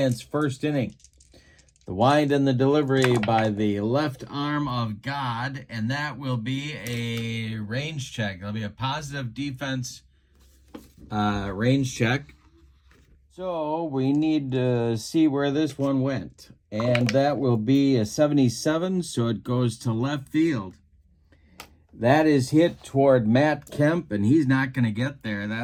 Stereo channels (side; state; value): both; identical; correlation 1.00